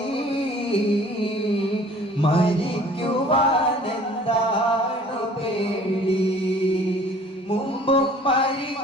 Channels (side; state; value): both; normal; correlation 0.51